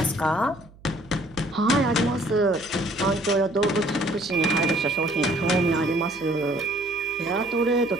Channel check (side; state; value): right; noise; hum, 24 dB below the sound